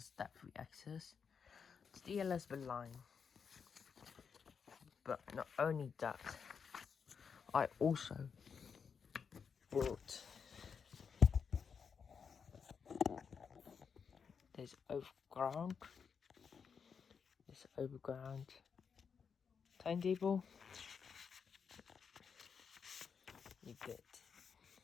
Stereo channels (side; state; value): right; quieter; 6.3 dB